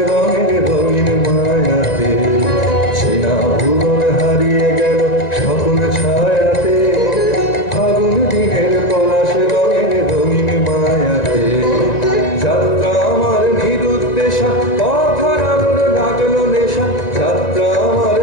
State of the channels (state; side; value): late; right; 1.9 ms